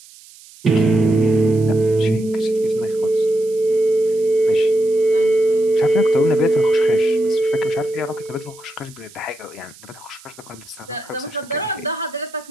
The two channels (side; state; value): right; noise; hiss, 22 dB below the sound